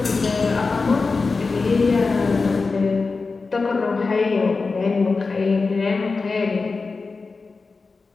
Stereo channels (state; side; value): quieter; right; 4.2 dB